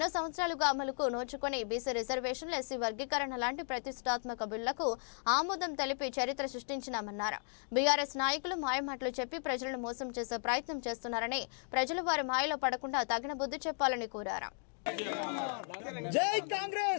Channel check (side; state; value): right; silent; 54 dB below the other